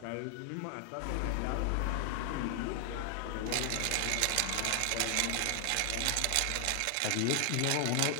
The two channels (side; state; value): both; different; correlation 0.00